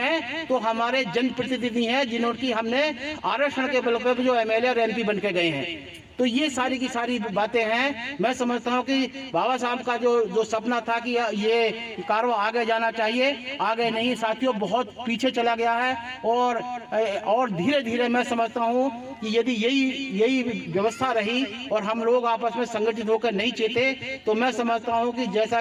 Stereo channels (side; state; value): both; identical; correlation 1.00